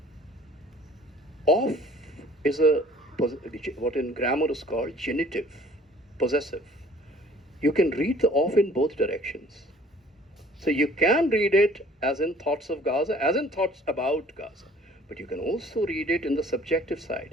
Of is what in grammar is called genitive, possessive. You can read the of in both directions. So you can read it as in thoughts of Gaza, as in thoughts about Gaza. But you can also read it in the subjective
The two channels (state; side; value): normal; both; correlation 0.53